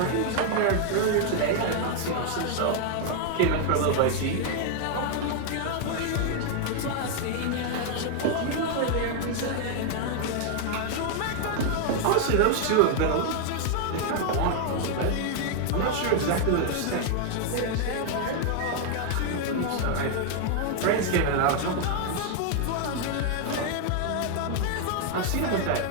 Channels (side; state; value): both; different; correlation 0.00